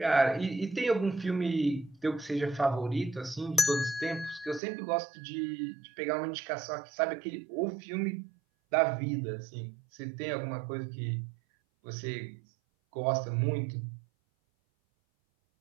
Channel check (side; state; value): left; drops out; at 4.6 s